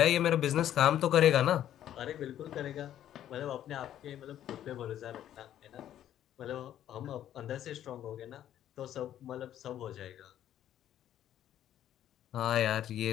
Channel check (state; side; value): quieter; right; 11.4 dB